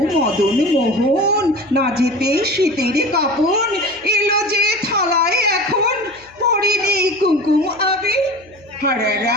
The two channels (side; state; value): left; noise; hum, 28 dB below the sound